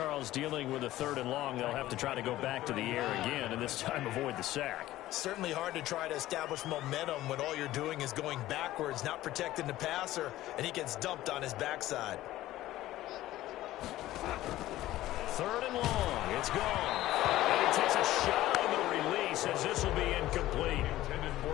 dealing with a 3rd and long. They'll have to try to go back to the air again, and this time avoid the sack. Certainly hard to try to establish momentum when all you're doing is going backwards, not protecting the passer, and he gets dumped on his backside. 3rd and long. It's gone. And he takes a shot on the release as this will be incomplete. Intended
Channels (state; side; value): quieter; right; 15.3 dB